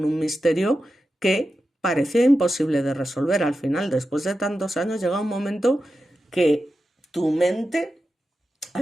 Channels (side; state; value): both; normal; correlation 0.91